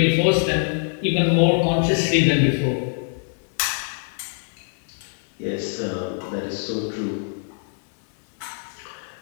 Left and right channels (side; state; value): right; silent; 63 dB below the other